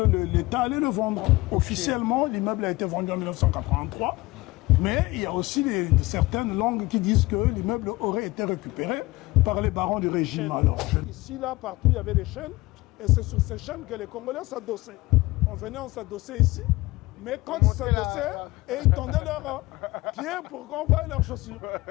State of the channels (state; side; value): quieter; right; 20.6 dB